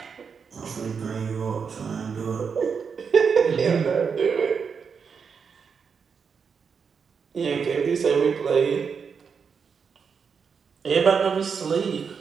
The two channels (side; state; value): left; quieter; 6.1 dB